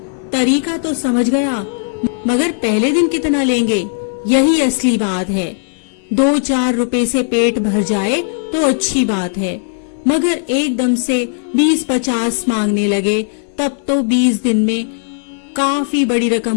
तरीका तो समझ गया, मगर पहले दिन कितना लेंगे, यही असली बात है। 2-4 रुपए से पेट भर जाए तो अच्छी बात है, मगर एकदम से 20-50 मांगने लगे, तब तो 20 दिन में काफी बड़ी रकम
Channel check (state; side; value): silent; right; digital silence